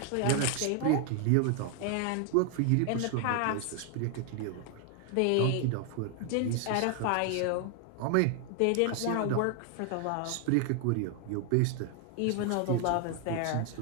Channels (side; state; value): both; different; correlation 0.00